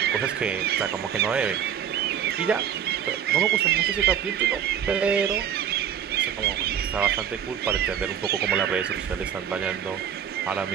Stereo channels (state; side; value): quieter; left; 8.8 dB